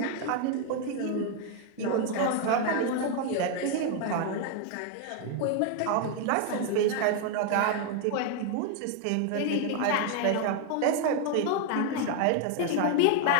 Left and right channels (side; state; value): both; different; correlation 0.00